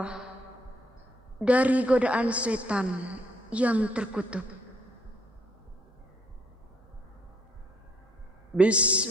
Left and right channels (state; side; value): normal; both; correlation 0.67